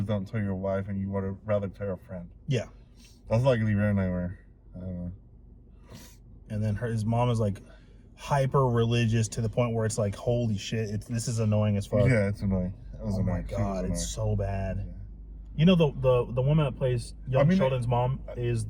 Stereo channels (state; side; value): identical; both; correlation 1.00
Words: don't tell your wife and you would rather tell a friend. Yeah. That's like the Aaron and I were. I don't know. And then his mom is like hyper religious to the point where it's like, holy shit, this is annoying as fuck. Yeah, it's annoying. Oh my god, it's so bad. Yeah. You know the woman that plays young Sheldon's mom is